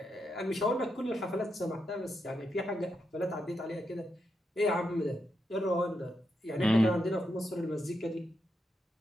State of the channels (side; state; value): both; normal; correlation 0.84